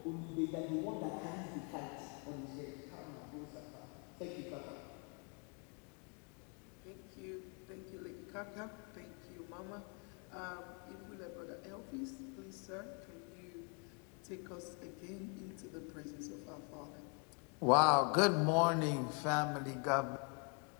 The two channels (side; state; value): right; quieter; 37.6 dB